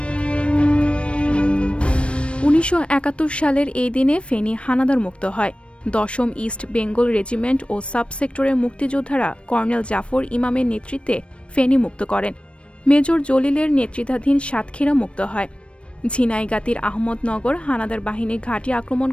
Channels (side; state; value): right; late; 0.060 ms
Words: ১৯৭১ সালের এই দিনে ফেনী হানাদার মুক্ত হয়। ১০ম ইস্ট বেঙ্গল রেজিমেন্ট ও সাবসেক্টরের মুক্তিযোদ্ধারা কর্নেল জাফর ইমামের নেতৃত্বে ফেনী মুক্ত করেন। মেজর জলিলের নেতৃত্বাধীন সাতক্ষীরা মুক্ত হয়। ঝিনাইগাতীর আহমদনগর হানাদার বাহিনীর ঘাঁটি আক্রমণ